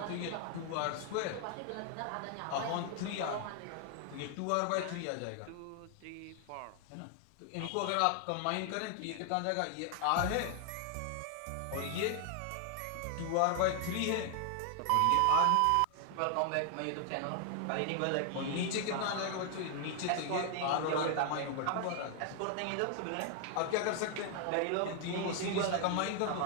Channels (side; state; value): both; different; correlation 0.00